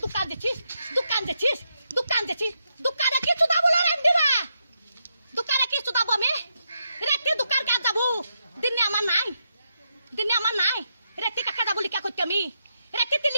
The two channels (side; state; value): both; inverted; correlation -0.82